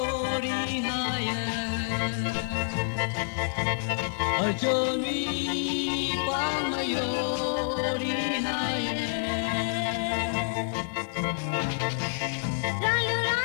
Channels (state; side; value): silent; right; 59 dB below the other